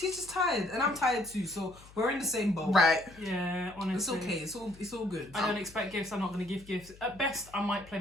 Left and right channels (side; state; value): left; noise; hum, 22 dB below the sound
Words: he's just tired, and I'm tired too. So we're in the same boat. Right. yeah, It's honestly. okay. It's all good. I don't expect gifts. I'm not going to give gifts. At best, I might play